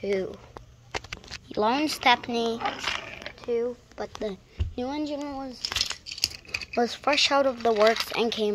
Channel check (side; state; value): both; identical; correlation 1.00